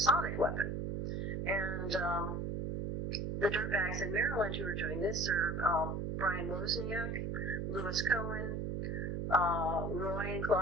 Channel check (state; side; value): noise; right; hum, 2 dB below the sound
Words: weapon. And the dirtbags in Maryland who are doing this are Brian Wozniak, Louis Cohen, Roy and